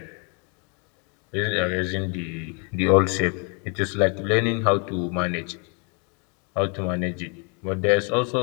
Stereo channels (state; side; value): quieter; right; 36.0 dB